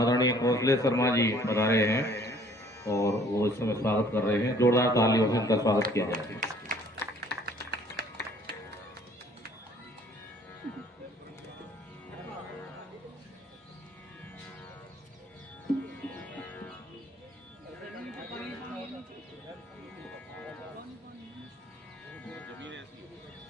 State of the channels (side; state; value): both; normal; correlation 0.57